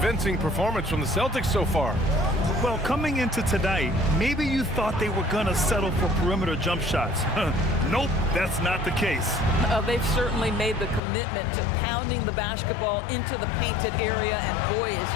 performance from the Celtics so far. Well, coming into tonight, maybe you thought they were going to settle for perimeter jump shots. Nope, that's not the case. They've certainly made the commitment to pounding the basketball into the painted area, and boy, is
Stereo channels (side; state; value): right; drops out; at 11.0 s